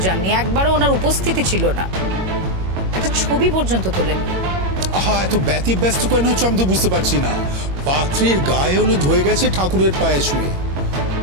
যাননি, একবারও ওনার উপস্থিতি ছিল না, একটা ছবি পর্যন্ত তোলেননি। আহা, এত ব্যস্ত কেন হচ্ছে আমি তো বুঝতে পারছি না। পাত্রীর গায়ে হলুদ হয়ে গেছে ঠাকুরের পায়ে শুয়ে,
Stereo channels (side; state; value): left; late; 21 ms